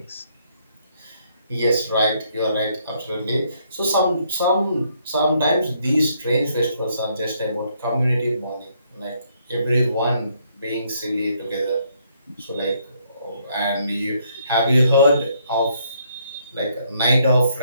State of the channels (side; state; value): both; inverted; correlation -0.70